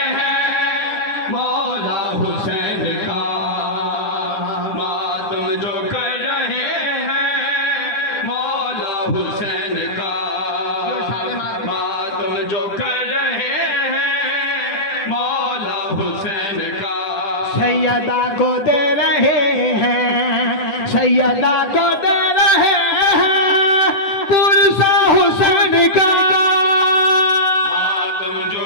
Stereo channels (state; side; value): late; right; 9.7 ms